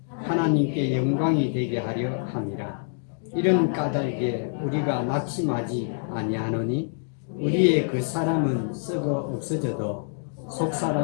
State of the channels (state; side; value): silent; right; digital silence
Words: 하나님께 영광이 되게 하려 함이라. 이런 까닭에 우리가 낙심하지 아니하노니 우리의 그 사람은 썩어 없어져도 속